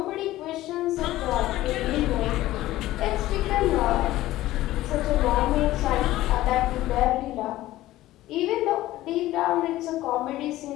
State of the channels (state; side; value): quieter; right; 15.8 dB